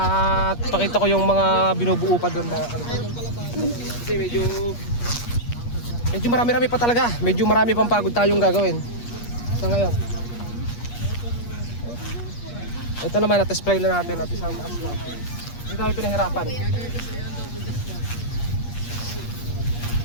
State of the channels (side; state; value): right; late; 8.4 ms